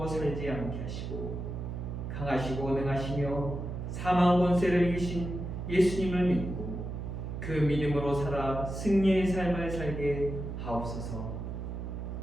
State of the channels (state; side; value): noise; right; hum, 6 dB below the sound